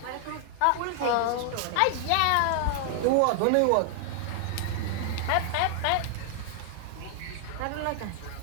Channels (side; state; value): both; different; correlation 0.00